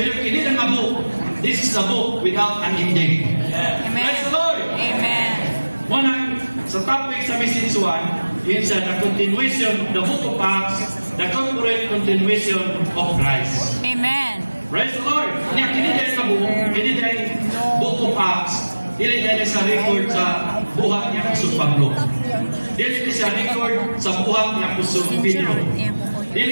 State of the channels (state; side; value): inverted; both; correlation -1.00